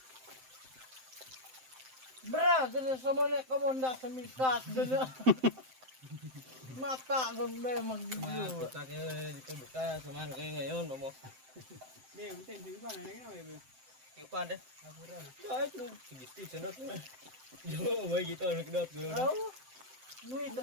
Bra, gana sa mga komanda sa miskas gana. Mata kung may mag-video. Kita kita buka sama kayak ngayon, Mamo. Be, butin di pa na nginaw be. Ipan deh. Apuran. Ya itu segitu senot. Yo, may kita nak dot gue. Bro, nuit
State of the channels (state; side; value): late; left; 7.7 ms